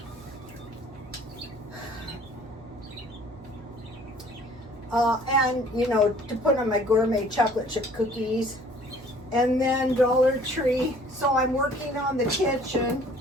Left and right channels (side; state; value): right; noise; hum, 20 dB below the sound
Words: And you know, to put on my gourmet chocolate chip cookies. And then Dollar Tree. So I'm working on the kitchen.